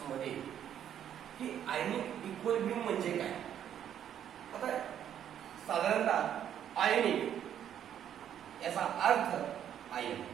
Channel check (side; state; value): left; quieter; 9.9 dB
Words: मध्ये की आयनिक इक्विलिब्रियम म्हणजे काय। आता साधारणतः आयनिक याचा अर्थ आयन,